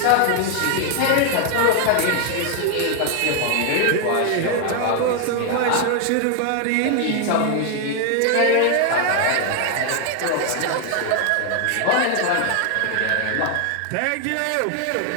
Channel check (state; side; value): different; both; correlation 0.00